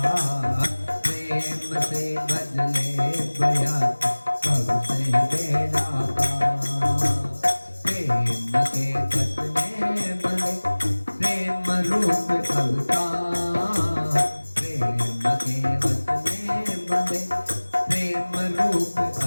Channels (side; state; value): both; inverted; correlation -1.00